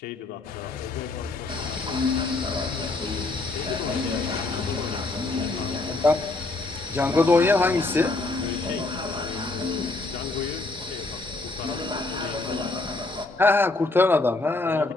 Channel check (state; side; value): quieter; right; 3.2 dB